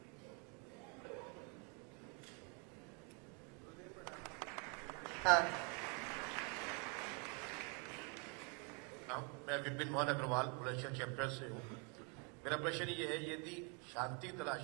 हाँ, मैं विपिन मोहन अग्रवाल बुलंदशहर चैप्टर से हूँ। मेरा प्रश्न ये है, यदि शांति तलाश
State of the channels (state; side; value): quieter; left; 35.1 dB